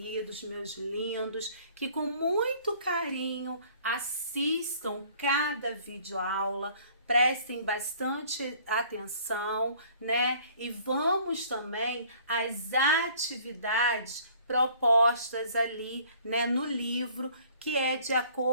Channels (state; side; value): inverted; both; correlation -0.55